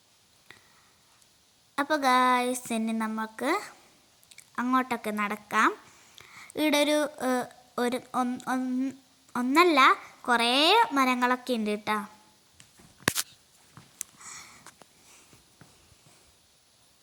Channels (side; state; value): both; identical; correlation 1.00